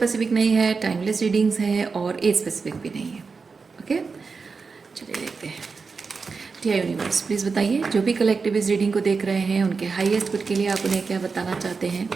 नहीं है, टाइमलेस रीडिंग्स है और एज स्पेसिफिक भी नहीं है। ओके, चलिए देखते हैं। डियर यूनिवर्स, प्लीज़ बताइए, जो भी कलेक्टिव इस रीडिंग को देख रहे हैं उनके हाईएस्ट गुड के लिए आप उन्हें क्या बताना चाहते हैं।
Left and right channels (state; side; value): quieter; left; 4.8 dB